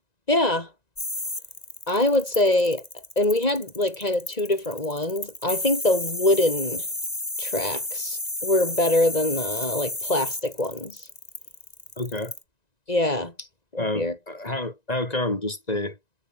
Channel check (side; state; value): right; late; 1.9 ms